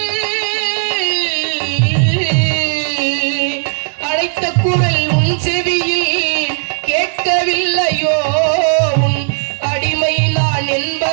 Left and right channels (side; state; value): left; silent; digital silence